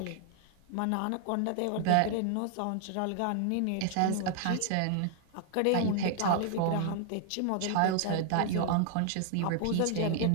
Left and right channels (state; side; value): different; both; correlation 0.00